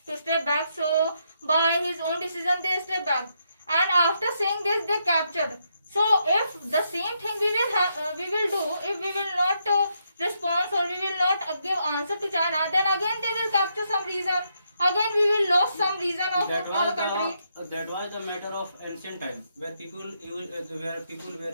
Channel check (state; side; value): inverted; both; correlation -0.78